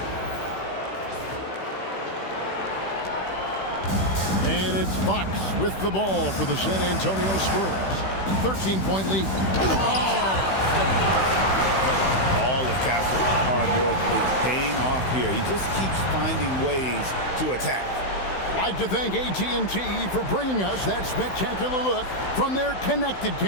And it's Fox with the ball for the San Antonio Spurs. 13-point lead. All of Castle's hard work is paying off here. He just keeps finding ways to attack. I'd like to thank AT&T for bringing us that spectacular look from their connected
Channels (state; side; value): late; right; 16 ms